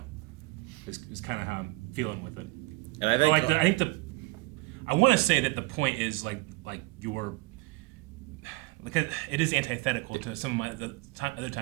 Is kind of how I'm feeling with it. And I think I want to say that the point is like your because it is antithetical to some of my other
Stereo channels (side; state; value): left; quieter; 23.2 dB